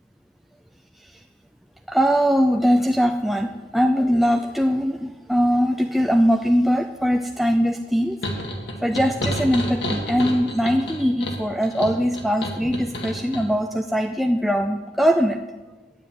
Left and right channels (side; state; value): both; normal; correlation 0.92